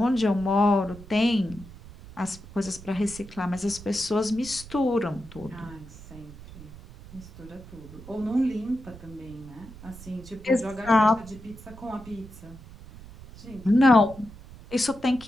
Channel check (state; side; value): noise; right; rumble, 17 dB below the sound